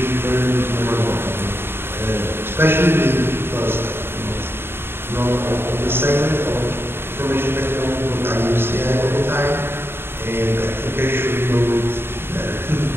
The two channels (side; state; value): left; late; 0.11 ms